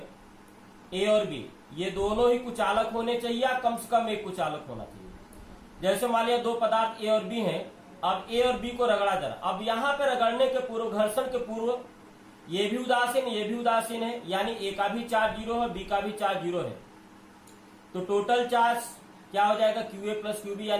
ए और बी, ये दोनों ही कुचालक होने चाहिए या कम से कम एक कुचालक होना चाहिए। जैसे मान लिया दो पदार्थ ए और बी हैं, अब ए और बी को रगड़ा जरा। अब यहाँ पे रगड़ने के पूर्व, घर्षण के पूर्व ये भी उदासीन ये भी उदासीन है, यानी ए का भी चार्ज 0 है, बी का भी चार्ज 0 है, तो टोटल चार्ज क्या हो जाएगा, क्यूए प्लस क्यूबी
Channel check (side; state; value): both; identical; correlation 1.00